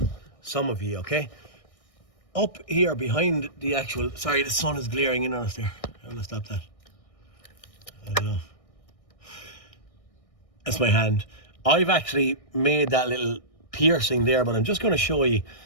some of you. Okay. Up here behind the actual, sorry, the sun is glaring in on us there. I'm going to stop that. I don't know. That's my hand. I've actually made that little piercing there, but I'm just going to show you,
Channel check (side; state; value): right; late; 1.6 ms